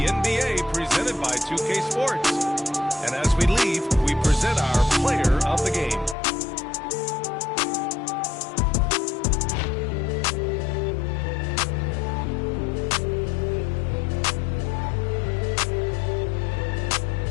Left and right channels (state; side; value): drops out; right; at 6.2 s